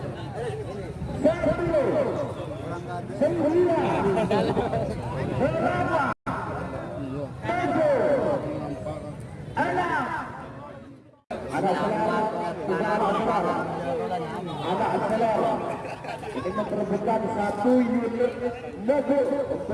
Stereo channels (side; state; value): both; identical; correlation 1.00